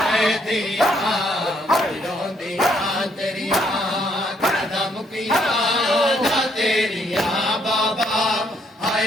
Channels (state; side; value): normal; both; correlation 0.71